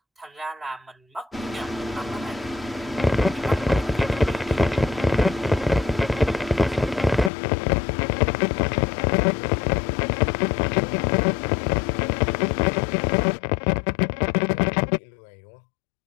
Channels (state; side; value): drops out; right; at 7.3 s